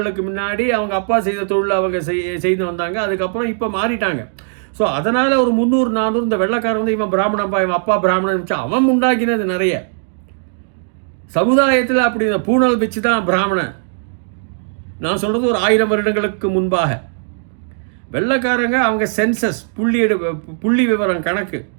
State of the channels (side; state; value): left; silent; digital silence